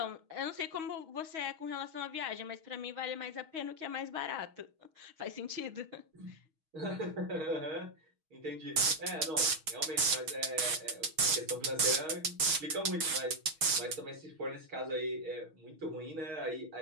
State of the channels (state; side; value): late; left; 6.3 ms